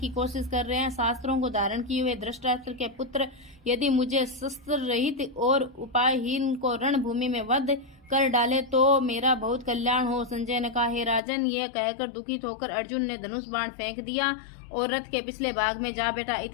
कोशिश कर रहे हैं। शास्त्रों को धारण किए हुए धृतराष्ट्र के पुत्र यदि मुझे शस्त्र रहित और उपायहीन को रणभूमि में वध कर डाले तो मेरा बहुत कल्याण हो। संजय ने कहा, हे राजन, यह कहकर दुखित होकर अर्जुन ने धनुष बाण फेंक दिया और रथ के पिछले भाग में जा बैठा।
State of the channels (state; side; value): drops out; right; at 11.2 s